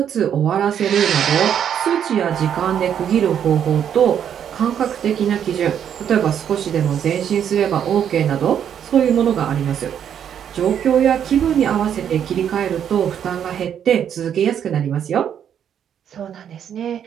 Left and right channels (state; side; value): quieter; left; 8.9 dB